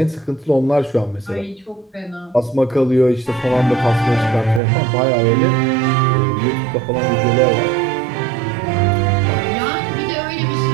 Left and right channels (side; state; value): left; drops out; at 4.6 s